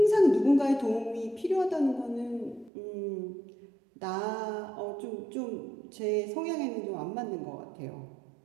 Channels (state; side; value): drops out; left; at 2.7 s